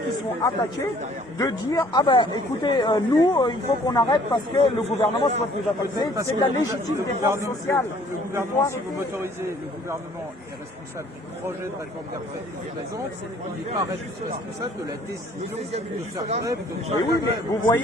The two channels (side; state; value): both; normal; correlation 0.57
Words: sont attaqués de dire ah ben écoutez nous il faut qu'on arrête parce que le gouvernement soit nous attaquer. C'est de la légitime défense sociale. Le gouvernement, si vous m'autorisez, le gouvernement est responsable du projet de réforme des retraites qu'il présente, il n'est pas responsable de la décision de faire grève. Oui, mais vous